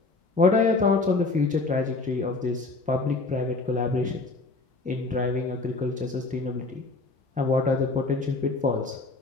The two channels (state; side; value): quieter; right; 3.5 dB